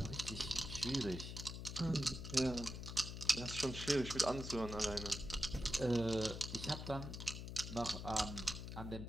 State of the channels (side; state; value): left; noise; hum, 7 dB below the sound